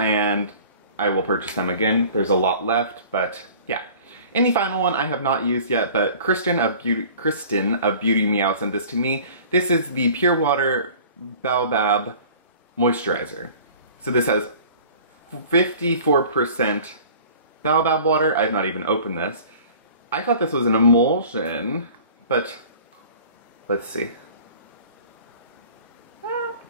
I will purchase them again. There's a lot left, but yeah. And the final one I have not used yet, but Kristen of Beauty Meow sent this to me. This is the Pure Water Baobab Moisturizer. So this has 54% baobab water. I've not even opened this. I thought this was an emulsion, but let's see.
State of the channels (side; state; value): both; inverted; correlation -0.46